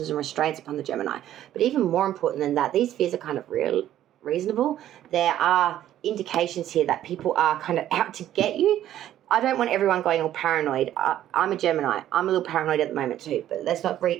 and restraints upon the Gemini. But even more important than that, these fears are kind of reasonable. There are indications here that people are kind of out to get you. I don't want everyone going all paranoid. I'm a Gemini. I'm a little paranoid at the moment too, but let's not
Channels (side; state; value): left; quieter; 12.2 dB